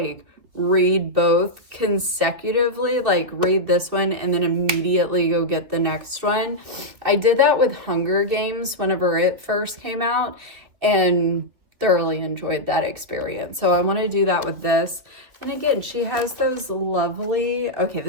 read both consecutively, like read this one and then immediately go get the next one. I did that with Hunger Games whenever it first came out and thoroughly enjoyed that experience. So I want to do that with this. And again, she has those lovely, okay,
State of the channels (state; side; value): late; left; 2.8 ms